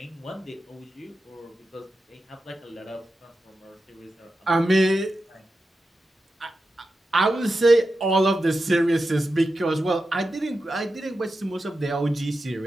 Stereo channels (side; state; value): both; normal; correlation 0.90